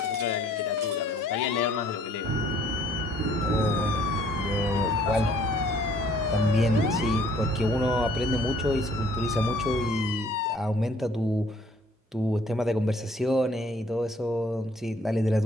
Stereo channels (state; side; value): normal; both; correlation 0.60